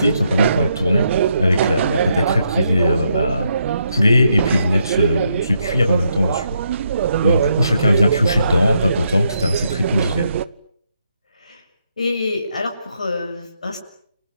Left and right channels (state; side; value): inverted; both; correlation -0.78